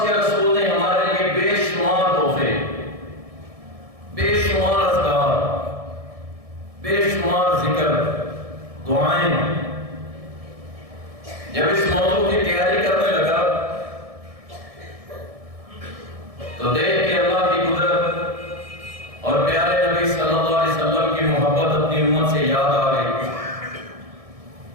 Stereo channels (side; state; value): left; late; 1.6 ms